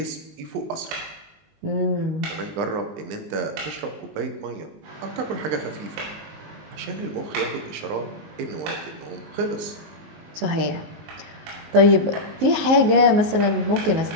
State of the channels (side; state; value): left; late; 19 ms